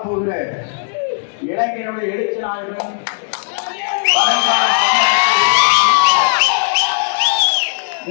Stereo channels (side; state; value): right; silent; digital silence